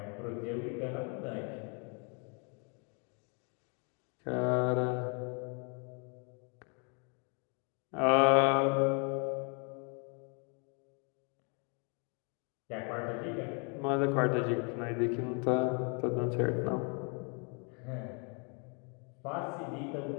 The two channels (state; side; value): quieter; right; 36.7 dB